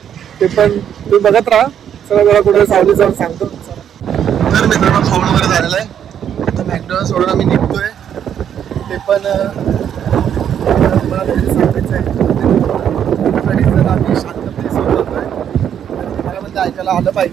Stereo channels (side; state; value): left; quieter; 9.2 dB